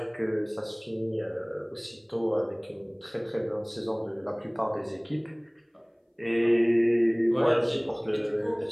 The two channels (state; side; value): identical; both; correlation 1.00